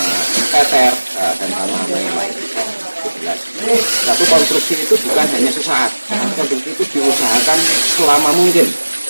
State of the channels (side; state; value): both; inverted; correlation -1.00